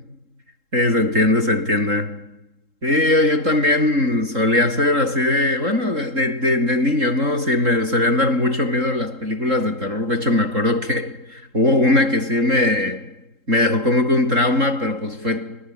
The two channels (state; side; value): late; left; 3.7 ms